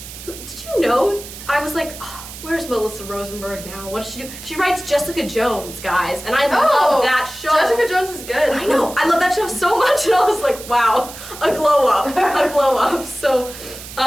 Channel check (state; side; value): noise; right; hiss, 13 dB below the sound